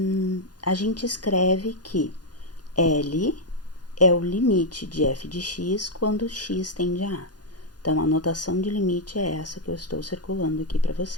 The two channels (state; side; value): late; right; 0.69 ms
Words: a gente escreve que L é o limite de f de x quando x tende a a. Então, a notação de limite é essa que eu estou circulando aqui para